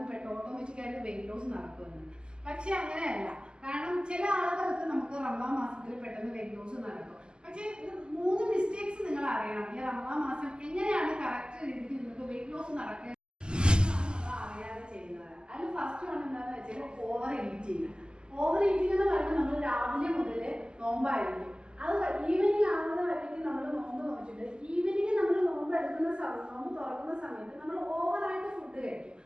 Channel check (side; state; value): left; late; 0.047 ms